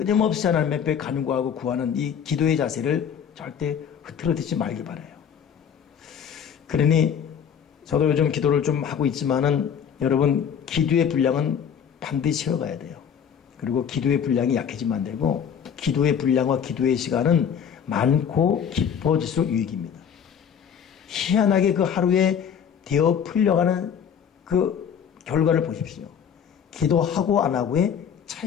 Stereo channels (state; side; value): quieter; right; 7.8 dB